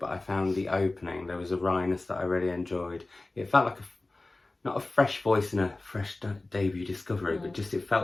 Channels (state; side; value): quieter; right; 3.0 dB